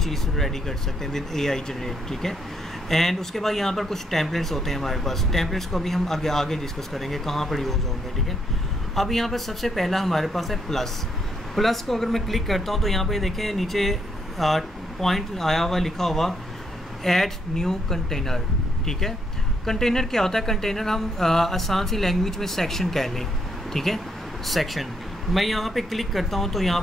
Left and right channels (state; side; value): normal; both; correlation 0.75